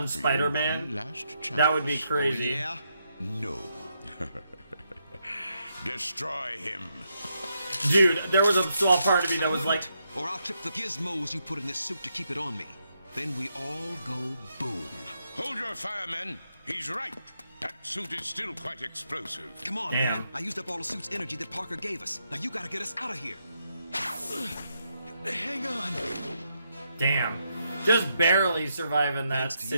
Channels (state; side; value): inverted; both; correlation -0.81